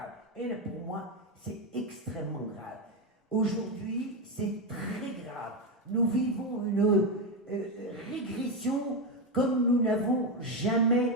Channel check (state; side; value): normal; both; correlation 0.09